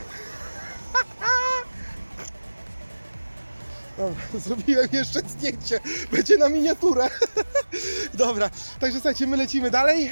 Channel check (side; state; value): both; inverted; correlation -1.00